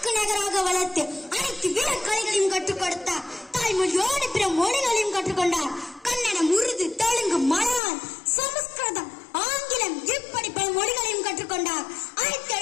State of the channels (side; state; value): right; drops out; at 7.8 s